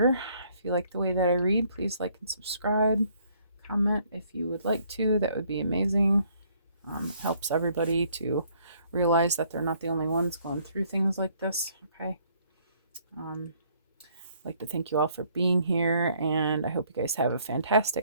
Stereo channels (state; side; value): inverted; both; correlation -0.64